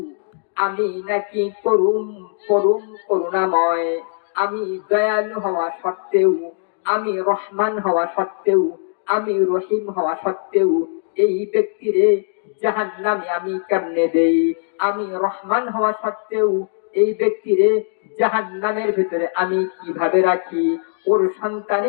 আমি নাকি করুণাময়। আমি দয়ালু হওয়া সত্ত্বেও, আমি রহমান হওয়া সত্ত্বেও, আমি রহিম হওয়া সত্ত্বেও এই ব্যক্তিরে জাহান্নামে আমি কেমনে দেই? আমি রহমান হওয়া সত্ত্বেও এই ব্যক্তিরে জাহান্নামের ভিতরে আমি কিভাবে রাখি? ওর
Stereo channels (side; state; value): right; silent; digital silence